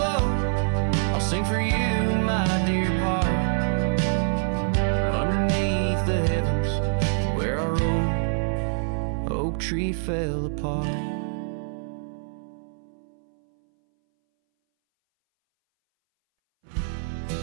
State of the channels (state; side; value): silent; left; 60 dB below the other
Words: I'll sing for you, my dear part, underneath the heavens where our old oak tree fell apart.